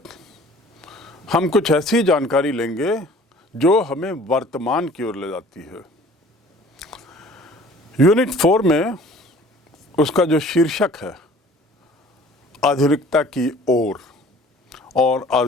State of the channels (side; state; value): both; normal; correlation 0.50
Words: हम कुछ ऐसी जानकारी लेंगे जो हमें वर्तमान की ओर ले जाती है। यूनिट 4 में उसका जो शीर्षक है आधुनिकता की ओर, और